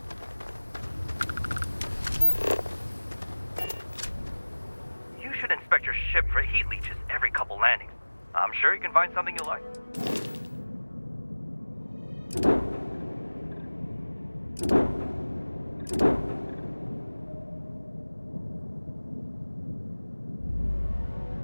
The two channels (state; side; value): inverted; both; correlation -1.00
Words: Inspect your ship for heat leeches every couple landings. I'm sure you can find something you like.